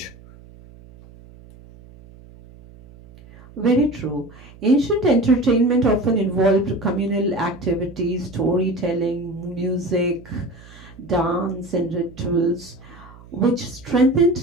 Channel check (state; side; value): noise; right; hum, 21 dB below the sound